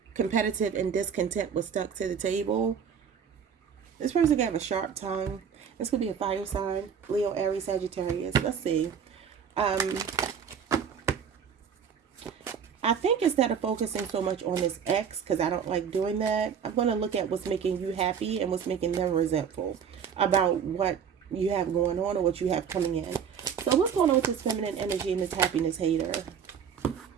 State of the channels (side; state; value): left; quieter; 7.4 dB